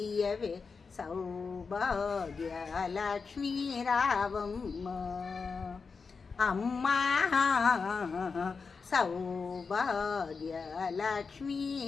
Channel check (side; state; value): right; quieter; 5.0 dB